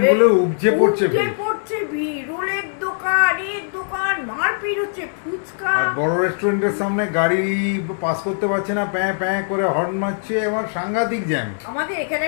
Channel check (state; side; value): silent; right; digital silence